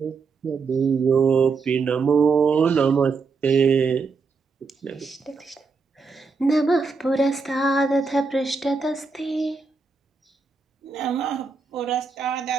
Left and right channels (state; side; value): quieter; left; 4.7 dB